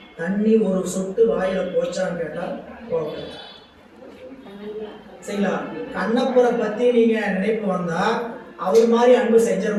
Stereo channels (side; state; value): both; identical; correlation 1.00